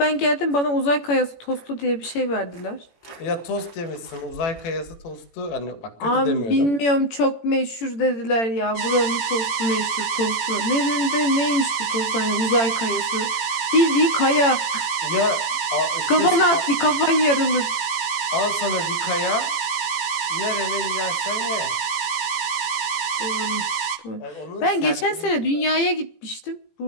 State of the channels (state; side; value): late; right; 18 ms